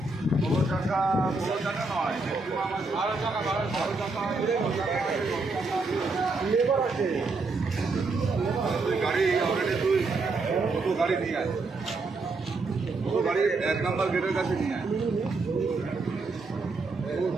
ষোলো টাকা নয়, গাড়ি অলরেডি তুই দুটো গাড়ি নিয়ে আয়, দুটো গাড়ি 1 নম্বর গেটের কাছে নিয়ে আয়।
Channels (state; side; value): quieter; left; 3.6 dB